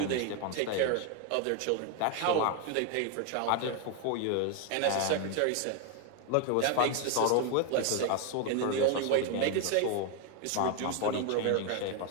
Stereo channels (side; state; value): both; different; correlation 0.01